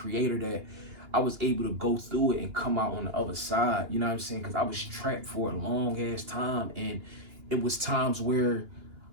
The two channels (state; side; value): late; left; 2.9 ms